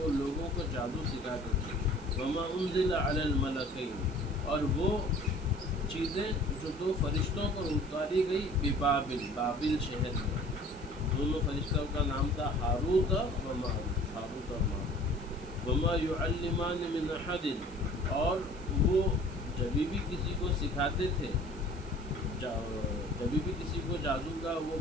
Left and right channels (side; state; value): left; noise; hiss, 25 dB below the sound